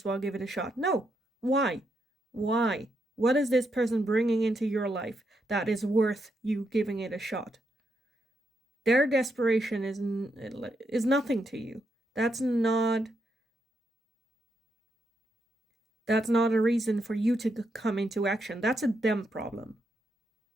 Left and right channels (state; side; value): normal; both; correlation 0.80